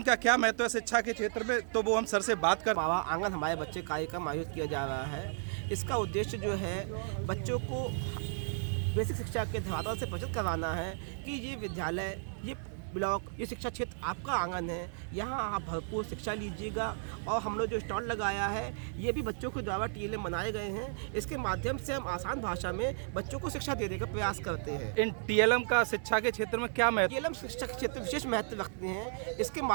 का क्या महत्व है शिक्षा के क्षेत्र में, तो वो हम सर से बात कर। बाबा आंगन हमारे बच्चे कार्यक्रम आयोजित किया जा रहा है। इसका उद्देश्य जो है बच्चों को बेसिक शिक्षा के धरातल से परिचित करवाना है कि ये विद्यालय, ये ब्लॉक, ये शिक्षा क्षेत्र आपका आंगन है, यहाँ आप भरपूर शिक्षा लीजिएगा। और हम लोग जो स्टॉल लगाया है ये भी बच्चों के द्वारा टीएलएम बनाए गए हैं। इसके माध्यम से हम आसान भाषा में बच्चों को शिक्षा देने का प्रयास करते हैं। इन टीएलएम का शिक्षा के क्षेत्र में क्या महत्व? टीएलएम शिक्षा के क्षेत्र में विशेष महत्व रखते हैं। इसके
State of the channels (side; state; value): left; silent; digital silence